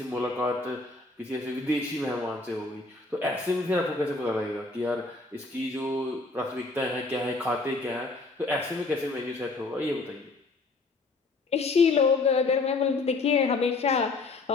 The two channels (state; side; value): quieter; right; 3.6 dB